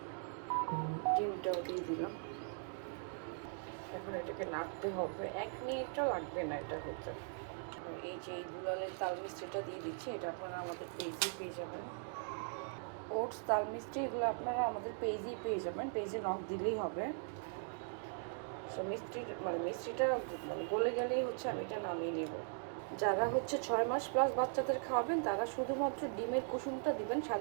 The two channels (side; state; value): left; silent; 51 dB below the other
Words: ডিমটাও দিয়ে দিলাম। এখন এটাকে নাড়তে হবে, 1 মিনিটও লাগবে না এটা হতে। আর এই যে এই দুলালের তাল মিষ্টিটা দিয়ে দিচ্ছি, এটা আপনারা আমাদের পেজেই পেয়ে যাবেন। ওটস তাল মিষ্টি এগুলো আপনারা আমাদের পেজেই পেয়ে যাবেন, পেজে নক দিলেই হবে। সো মিষ্টিটা গলে গেলেই হচ্ছে আমি এটা নামিয়ে নেব। যারা হচ্ছে 6 মাস প্লাস বাচ্চাদের খাওয়াবেন তারা শুধুমাত্র ডিমের কুসুমটা দিবেন,